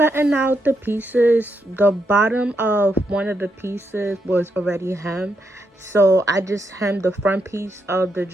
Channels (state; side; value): normal; both; correlation 0.81